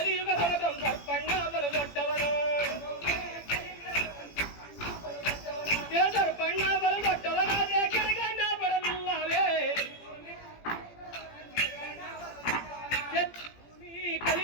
ಸರ್ಪಣ್ಣ ಬಲು ದೊಡ್ಡವನು ಸರ್ಪಣ್ಣ ಬಲು ದೊಡ್ಡವನಾದ್ರೆ ಕೆಳಗಣ್ಣ ಬರಲಿಲ್ಲವೇ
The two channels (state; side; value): late; right; 17 ms